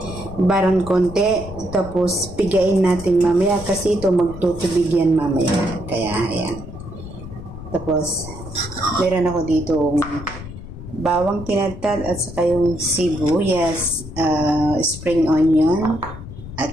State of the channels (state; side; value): noise; left; rumble, 12 dB below the sound